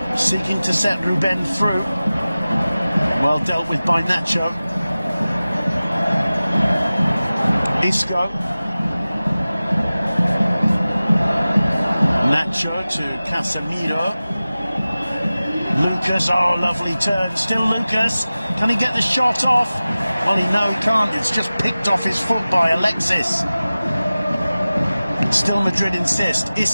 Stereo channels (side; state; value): both; inverted; correlation -0.97